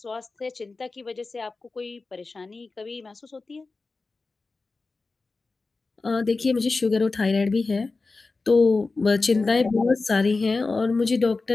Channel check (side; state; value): right; quieter; 3.8 dB